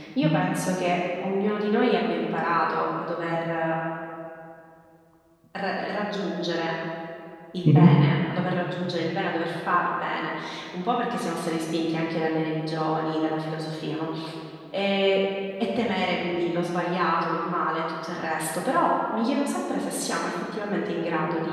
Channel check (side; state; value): both; identical; correlation 1.00